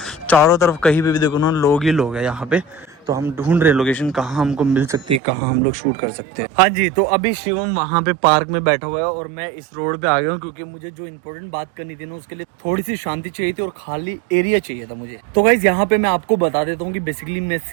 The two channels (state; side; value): drops out; left; at 5.2 s